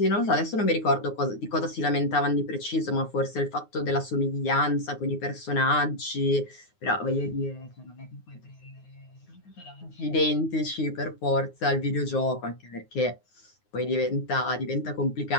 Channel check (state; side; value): late; right; 9.5 ms